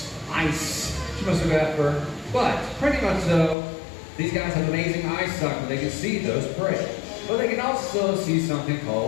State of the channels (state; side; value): drops out; right; at 3.6 s